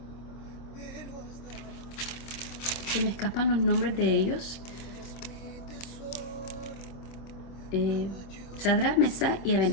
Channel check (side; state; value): right; late; 25 ms